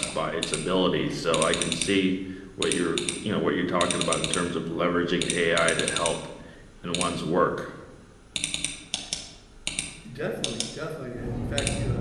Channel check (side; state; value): both; identical; correlation 1.00